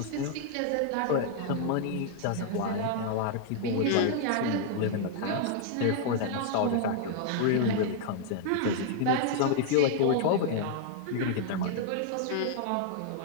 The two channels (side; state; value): both; different; correlation 0.00